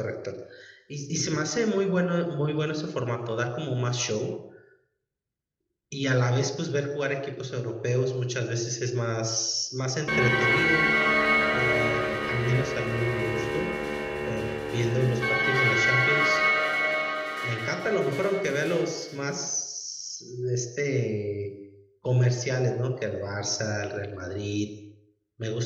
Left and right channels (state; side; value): identical; both; correlation 1.00